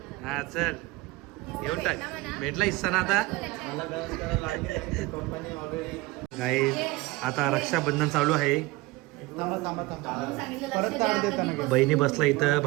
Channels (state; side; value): quieter; left; 20.3 dB